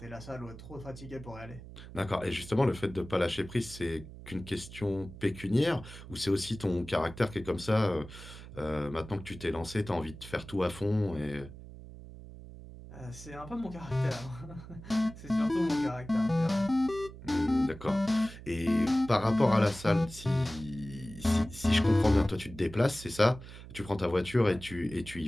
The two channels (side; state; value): right; noise; hum, 15 dB below the sound